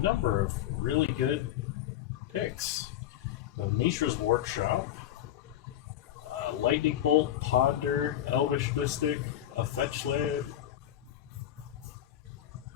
of really good picks. We have Mishra's Workshop, Lightning Bolt, Ponder, Elvish Mystic, a Fetch Land,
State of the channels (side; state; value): right; quieter; 12.0 dB